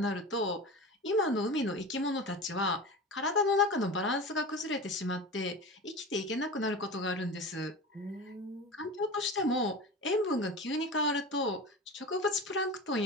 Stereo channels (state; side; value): normal; both; correlation 0.30